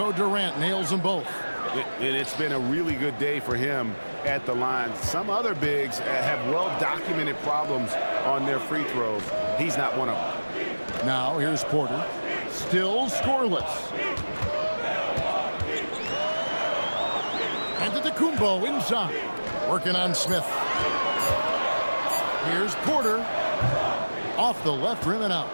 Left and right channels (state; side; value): inverted; both; correlation -1.00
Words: Durant nails them both. It's been a really good day for him at the line. Some other bigs have well-documented problems on their free throws. He's not one of them. Now here's Porter. Still scoreless. And Antetokounmpo inside. Working on Smith. Here's Porter. Off the left rim and out.